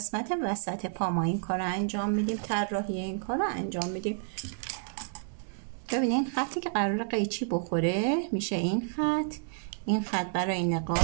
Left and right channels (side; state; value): left; silent; digital silence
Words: وسط پا ما این کار رو انجام میدیم، طراحی این کار رو انجام میدیم. ببینین خطی که قرار قیچی بخوره میشه این خط. این خط برای